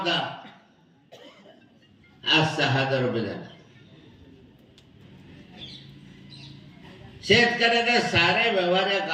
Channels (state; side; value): identical; both; correlation 1.00